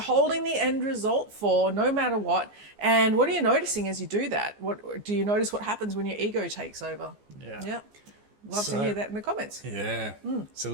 the end result for, no matter what? And what are you noticing as you do that? What do you notice? What happens when your ego takes over? Yeah. Love to hear that in the comments. Yeah. So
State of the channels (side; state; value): left; late; 14 ms